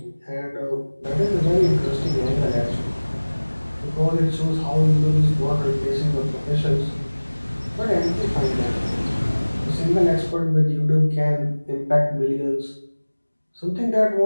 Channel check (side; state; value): both; inverted; correlation -1.00